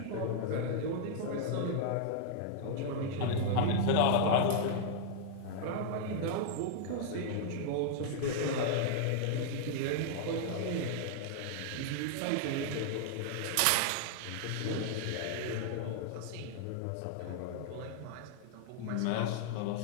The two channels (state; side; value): different; both; correlation -0.01